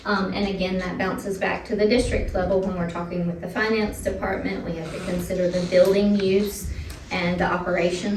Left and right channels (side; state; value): both; identical; correlation 1.00